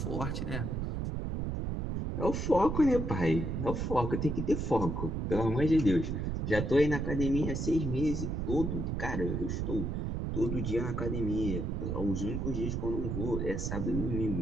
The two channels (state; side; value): noise; right; rumble, 2 dB below the sound